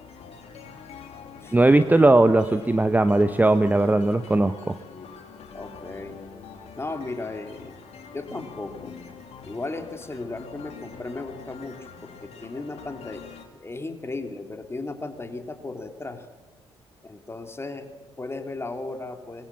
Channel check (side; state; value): both; normal; correlation 0.93